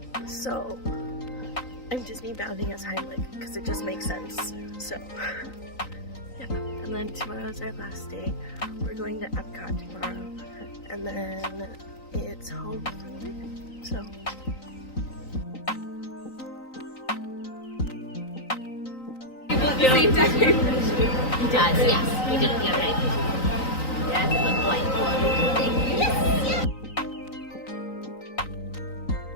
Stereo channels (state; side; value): late; right; 3.9 ms